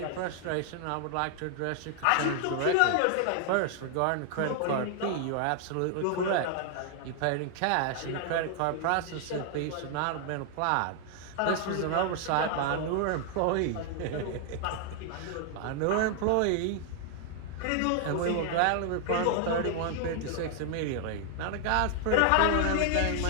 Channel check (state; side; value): different; both; correlation 0.00